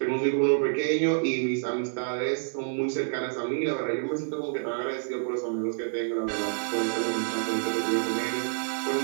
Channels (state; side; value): silent; left; digital silence